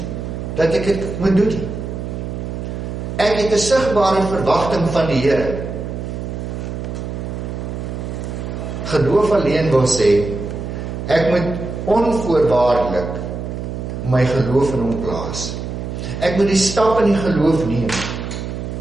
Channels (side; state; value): right; noise; hum, 6 dB below the sound